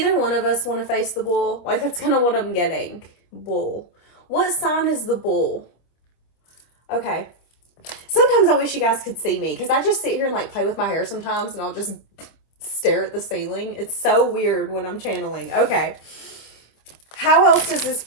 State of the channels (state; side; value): late; right; 26 ms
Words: one of us want to face the bull? Like, that's kind of what I'm getting. Bull. What sign is the bull? Okay. Sometimes I wish you guys could see me, because I just sit here and like play with my hair sometimes, and I'll just stare at the ceiling. It's so weird when I'm channeling. Okay. How else does this